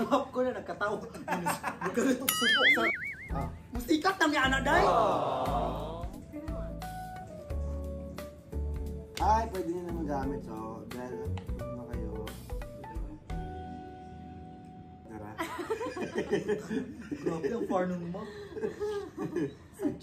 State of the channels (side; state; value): both; identical; correlation 1.00